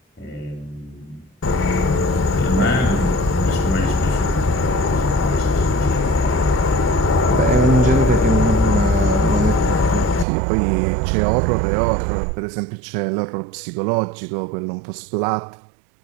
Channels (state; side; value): drops out; left; at 10.2 s